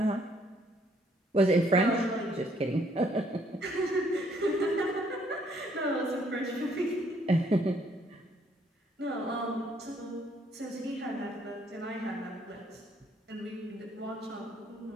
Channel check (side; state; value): both; normal; correlation 0.67